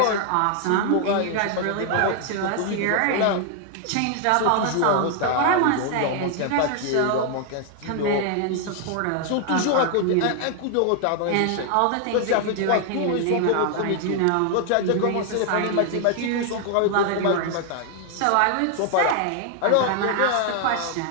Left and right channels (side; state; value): both; different; correlation 0.00